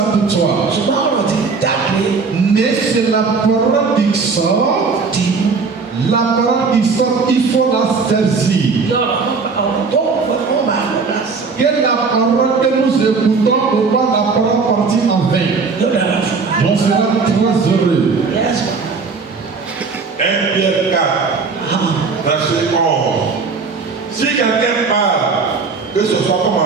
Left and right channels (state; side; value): quieter; left; 4.7 dB